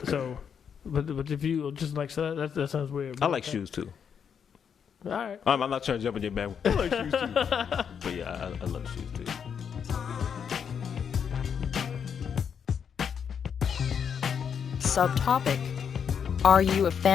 So, but if you just like, so that sounds weird. I like shoes too. All right. I'm not trying to jump in your bag. I like shoes too. But yeah, I love shoes too. Subtopic. Are you a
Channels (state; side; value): quieter; right; 7.3 dB